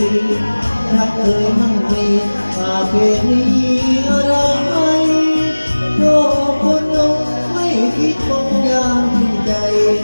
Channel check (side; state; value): both; inverted; correlation -1.00